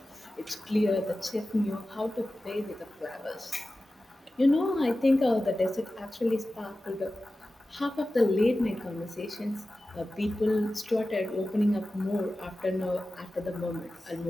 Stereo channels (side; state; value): both; normal; correlation 0.95